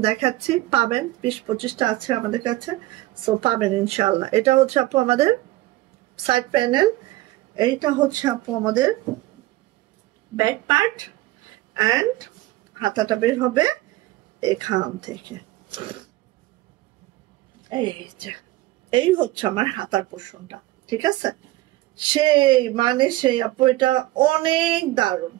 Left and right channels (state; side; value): quieter; left; 17.6 dB